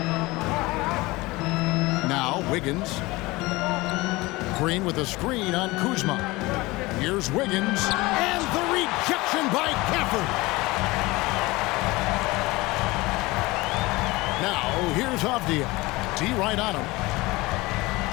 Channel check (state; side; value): quieter; right; 21.6 dB